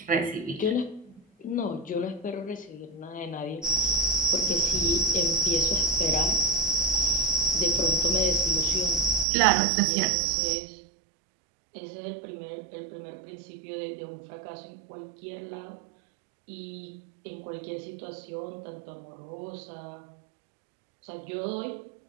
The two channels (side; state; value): left; drops out; at 9.2 s